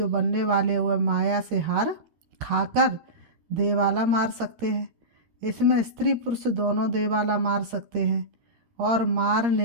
बनने वाले हुए माया से हार खाकर देवाला मार सकते हैं। इसमें स्त्री पुरुष दोनों देवाला मार सकते हैं। और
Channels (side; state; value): left; late; 13 ms